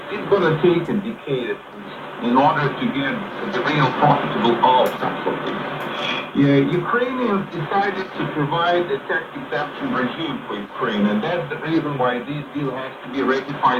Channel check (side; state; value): both; identical; correlation 1.00